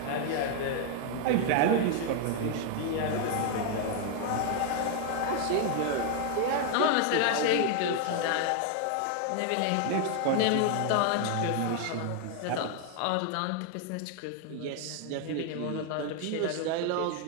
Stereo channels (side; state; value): both; different; correlation 0.00